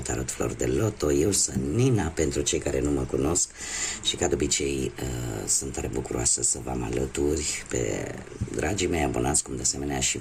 Flori de Loto. Eu sunt Nina, pentru cei care nu mă cunosc, și ca de obicei sunt tare bucuroasă să vă am alături pe dragii mei abonați, cum de asemenea și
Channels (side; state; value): both; identical; correlation 1.00